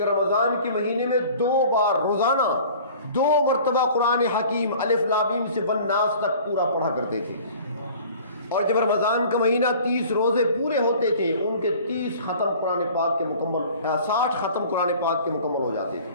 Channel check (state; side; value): inverted; both; correlation -0.47